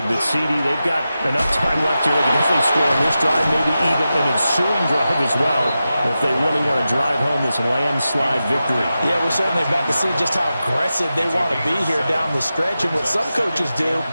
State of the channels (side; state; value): both; inverted; correlation -0.92